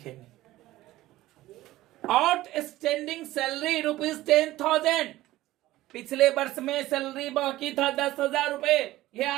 आउटस्टैंडिंग सैलरी ₹10,000, पिछले वर्ष में सैलरी बाकी था 10,000 रुपए। यह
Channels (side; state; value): left; quieter; 16.3 dB